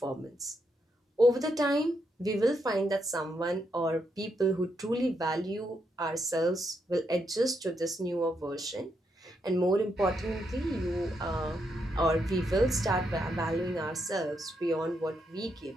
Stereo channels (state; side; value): normal; both; correlation 0.80